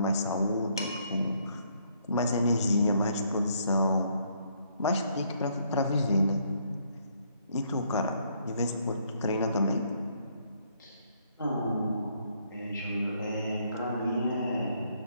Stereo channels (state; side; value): inverted; both; correlation -0.69